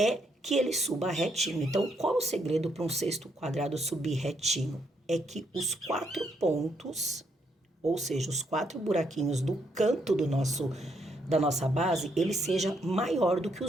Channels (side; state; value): both; normal; correlation 0.75